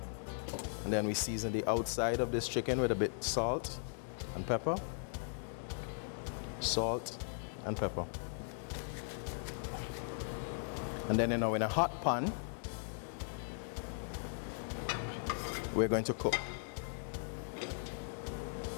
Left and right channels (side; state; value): right; silent; digital silence